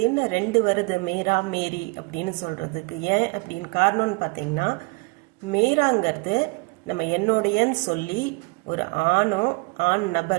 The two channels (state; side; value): quieter; left; 28.9 dB